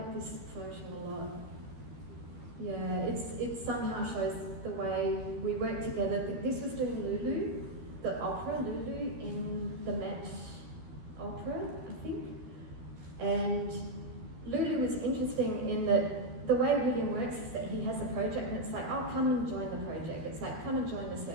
this photo a lot. Yeah, it somehow shows the way we work together. This was doing Lulu, the opera Lulu in the Met Opera, I think. And Lulu was interesting in that the way William works is that he has a project and it's like, oh, come and join the project. It's like, come and join the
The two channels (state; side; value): late; left; 12 ms